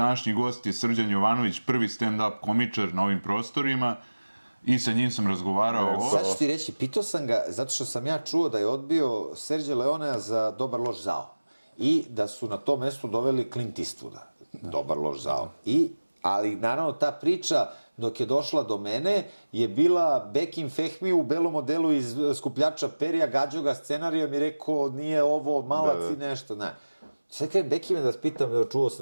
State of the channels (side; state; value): both; inverted; correlation -1.00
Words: gost je Srđan Jovanović, prvi stand-up komičar na ovim prostorima i sa njim sam razgovarao o... Sad ću ti reći, pitao sam ga, zato što sam ja čuo da je odbio Serđa Leonea za Dobar loš zao i da su na to mesto doveli Clint Eastwooda, Dobar loš zao. Ali naravno ta priča dok je došla do mene je bila Bekim Fehmi u belom modelu iz Skupljača perija, gađao ga scenarijom i rekao nije ovo malac i nešto, ne. Sad kada Bekime da vas pitam, čuo